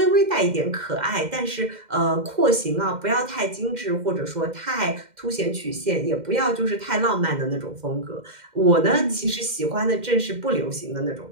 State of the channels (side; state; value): left; late; 2.1 ms